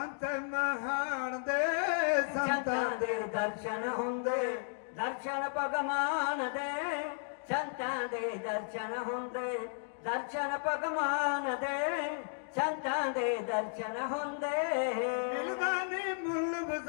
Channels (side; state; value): right; silent; digital silence